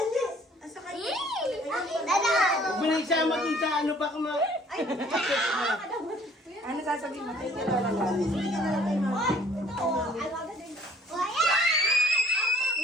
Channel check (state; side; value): normal; both; correlation 0.57